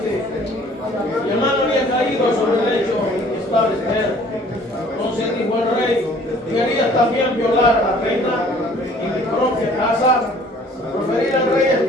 y el mano había caído sobre el lecho en que estaba Esther. Entonces dijo el rey: ¿querías también violar a la reina en mi propia casa? Proferir al rey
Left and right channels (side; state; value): both; normal; correlation 0.54